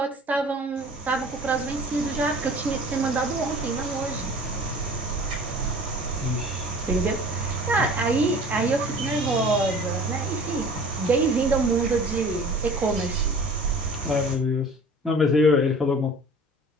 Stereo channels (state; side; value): normal; both; correlation 0.45